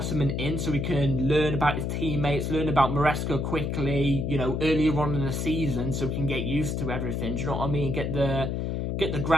in so we can learn about his teammates, learn about Maresca quickly, you know, earlier on in the season so we can get used to everything. Do you know what I mean? Get the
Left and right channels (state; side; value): noise; left; hum, 1 dB below the sound